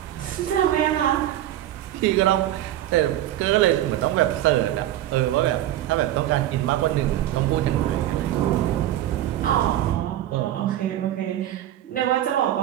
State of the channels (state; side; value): quieter; left; 13.0 dB